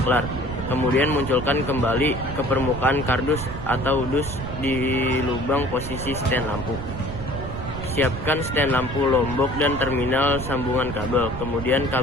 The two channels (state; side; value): noise; right; rumble, 8 dB below the sound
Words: Kemudian munculkan kembali ke permukaan kardus atau dus di lubang posisi stand lampu. Siapkan stand lampu lombok dan terminal sambungan kabel. Kemudian